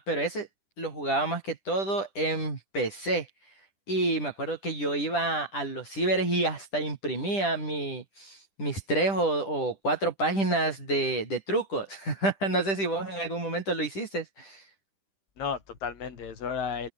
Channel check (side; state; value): right; late; 10 ms